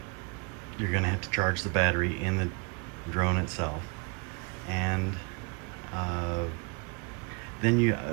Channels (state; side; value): quieter; left; 33.6 dB